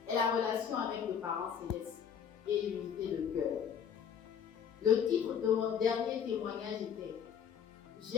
est la relation avec le parent céleste et l'unité de cœur. Le titre de mon dernier témoignage était «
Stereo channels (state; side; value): quieter; right; 7.8 dB